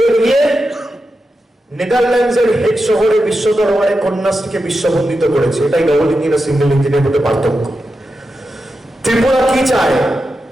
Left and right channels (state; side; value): normal; both; correlation 0.89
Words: গিয়ে নেদারল্যান্ডসের হেড শহরে বিশ্ব দরবারে কন্যাশ্রীকে বিশ্ববন্দিত করেছে। এটাই ডবল ইঞ্জিন আর সিঙ্গেল ইঞ্জিনের মধ্যে পার্থক্য। ত্রিপুরা কি চায়?